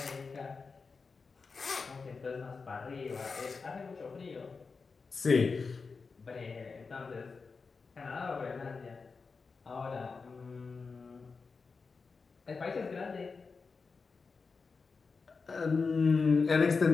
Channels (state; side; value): quieter; right; 4.7 dB